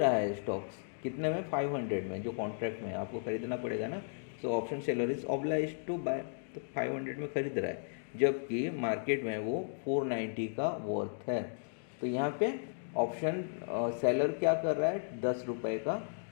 है स्टॉक्स कितने में, 500 में, जो कॉन्ट्रैक्ट में आपको खरीदना पड़ेगा ना। So option seller is oblige to buy, तो 500 में खरीद रहा है, जबकि मार्केट में वो 490 का वर्थ है। तो यहाँ पे ऑप्शन सेलर क्या कर रहा है, 10 रुपये का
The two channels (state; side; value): silent; right; digital silence